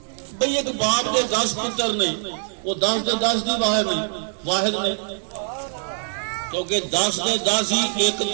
بھئی ایک باپ دے 10 پتر نہیں، وہ 10 دے 10 دی واحد نہیں، کیونکہ 10 دے 10 ہی ایک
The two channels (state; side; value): silent; left; 60 dB below the other